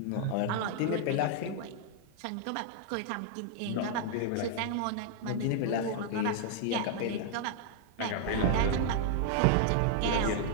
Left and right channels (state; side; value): different; both; correlation -0.01